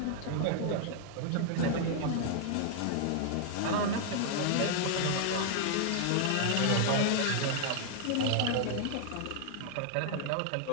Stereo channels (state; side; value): different; both; correlation 0.00